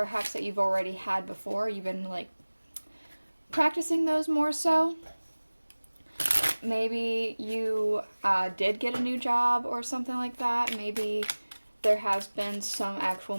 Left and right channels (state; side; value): inverted; both; correlation -1.00